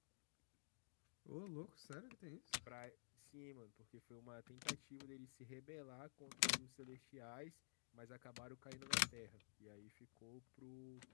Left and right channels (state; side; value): silent; right; digital silence